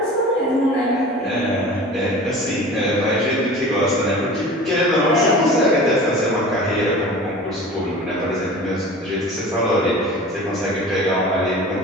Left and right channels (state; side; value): normal; both; correlation 0.39